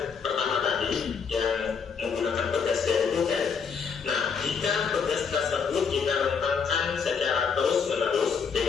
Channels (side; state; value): right; quieter; 6.1 dB